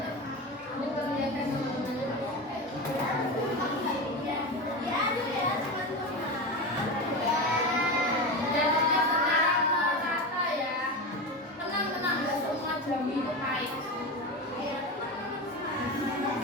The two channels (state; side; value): normal; both; correlation 0.22